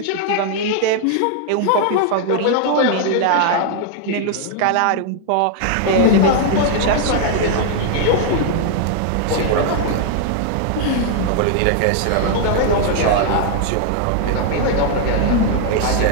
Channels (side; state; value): both; different; correlation 0.00